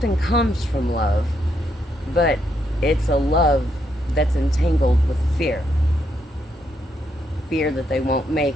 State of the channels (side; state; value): both; normal; correlation 0.77